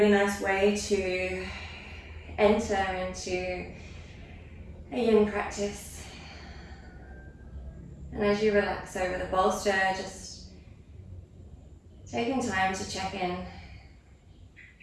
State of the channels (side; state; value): both; identical; correlation 1.00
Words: nice way to enter into a yin practice. And as you relax over the bolster, just taking time to check in.